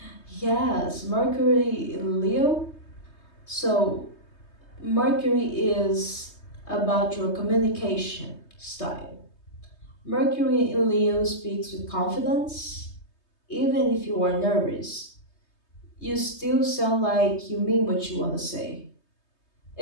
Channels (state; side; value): late; right; 3.2 ms